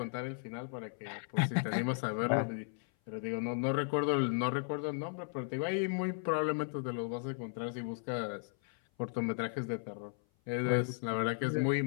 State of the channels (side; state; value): right; silent; 54 dB below the other